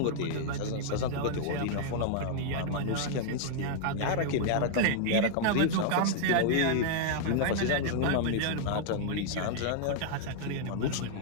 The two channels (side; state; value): both; different; correlation -0.01